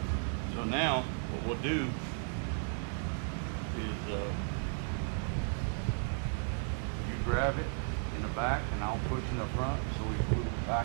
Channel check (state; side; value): silent; left; 55 dB below the other